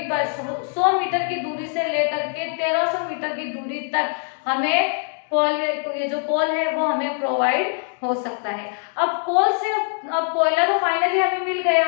100 मीटर की दूरी से लेकर के 1300 मीटर की दूरी तक हमें कोल, ये जो कोल है वो हमें प्रोवाइड हो सकता है। अब कोल से, अब कोयला तो फाइनली हमें मिल गया,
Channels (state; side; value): silent; right; 60 dB below the other